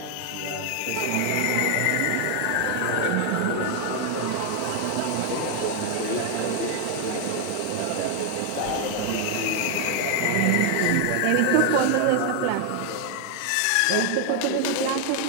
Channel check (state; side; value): different; both; correlation 0.01